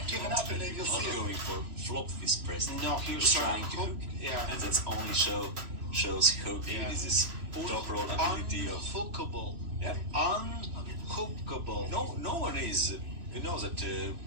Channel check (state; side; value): late; left; 3.0 ms